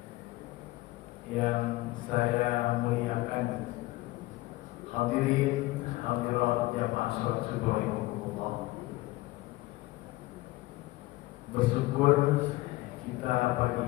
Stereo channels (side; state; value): right; quieter; 19.7 dB